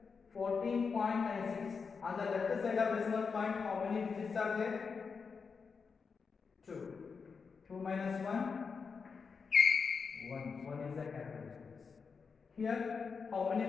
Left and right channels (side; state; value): right; quieter; 5.4 dB